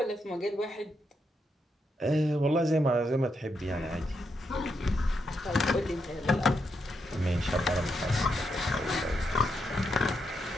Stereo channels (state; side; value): normal; both; correlation 0.81